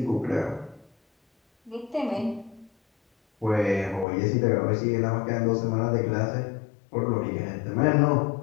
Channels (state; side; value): drops out; right; at 4.0 s